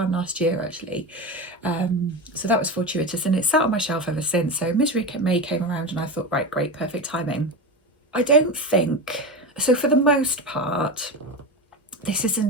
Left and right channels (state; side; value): normal; both; correlation 0.22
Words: last year actually. So that was fortuitous, and it's sat on my shelf ever since. So Misery May came around and I thought, right, great, perfect timing. I don't think, so for the most part, this